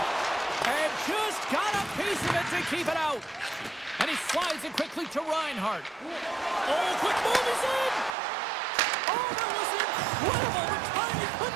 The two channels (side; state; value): left; drops out; at 8.1 s